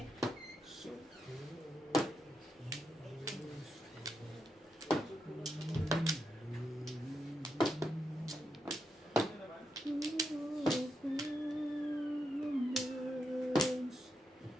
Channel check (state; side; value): normal; both; correlation 0.83